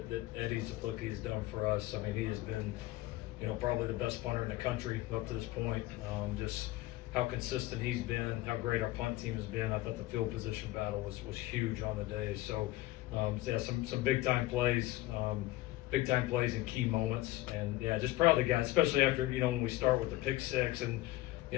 Eddie Zaplucki has done for us. I mean, he has been, probably the best punter in the country up to this point. Just how consistent he's been, how great our punt team has been. I thought the field position battle was huge on the day. So yeah, some big time plays. Big time plays in key moments, and yeah, just proud of the guys, especially after when we start with the pick six, and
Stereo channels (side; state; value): right; quieter; 17.5 dB